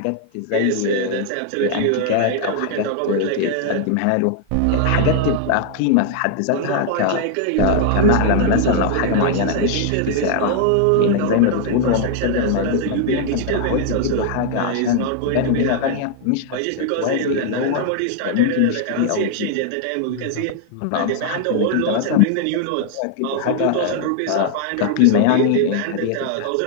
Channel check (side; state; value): both; different; correlation 0.00